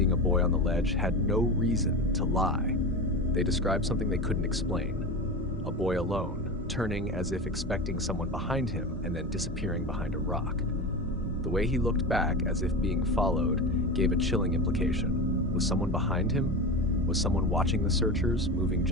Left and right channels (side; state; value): both; normal; correlation 0.25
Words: a boy on the ledge had no reason to lie. They described something they couldn't explain. A boy alone, turning as if expecting someone behind him and then disappearing behind a rock. The way he looked back as if being followed gave a chilling implication. Was someone behind him? Was someone watching the searchers, moving